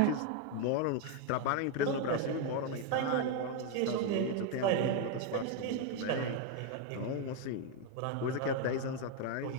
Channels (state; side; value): different; both; correlation 0.01